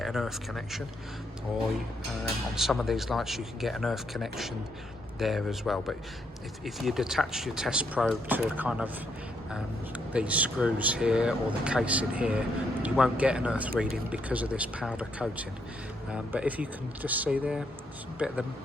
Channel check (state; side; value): normal; both; correlation 0.75